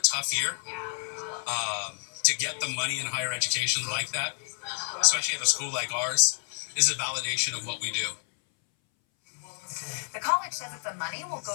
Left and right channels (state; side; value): silent; right; 58 dB below the other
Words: tough year to get the money in higher education like that, especially at a school like ours, is a validation of what we do. The college says that the money will